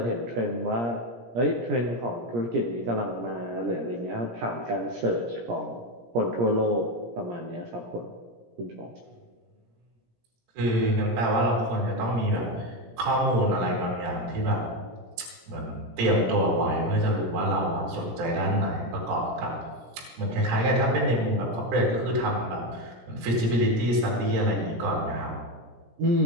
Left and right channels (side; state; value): left; late; 17 ms